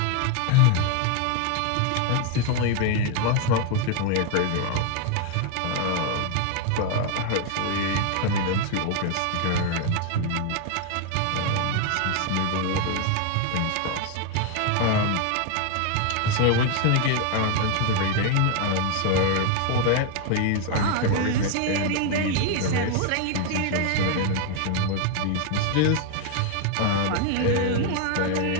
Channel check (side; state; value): both; different; correlation 0.01